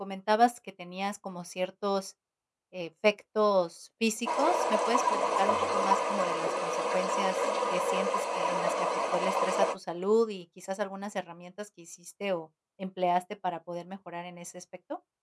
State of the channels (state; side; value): identical; both; correlation 1.00